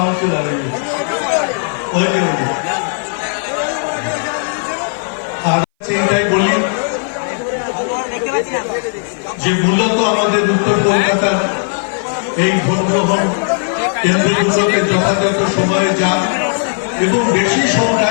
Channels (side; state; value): right; silent; 61 dB below the other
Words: ওই যে আর এটাই বলি যে মূলত আমাদের উত্তর কলকাতার এই ভোট গ্রহণ কেন্দ্রগুলোকে যথাযথ সময়ে যান এবং বেশি